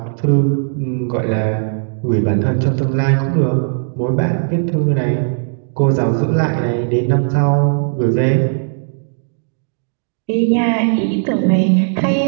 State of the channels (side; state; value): left; silent; digital silence